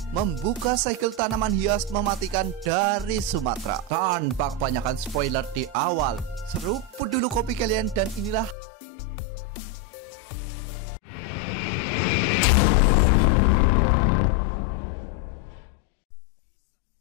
membuka segel tanaman hias mematikan dari Sumatera. Tanpa kebanyakan spoiler di awal, seruput dulu kopi kalian dan inilah alur cerita film Harum Malam. Kisah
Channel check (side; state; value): right; drops out; at 8.6 s